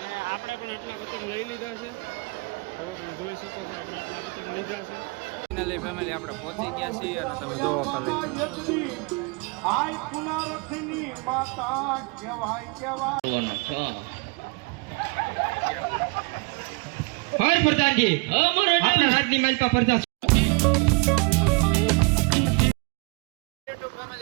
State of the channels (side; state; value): left; quieter; 30.9 dB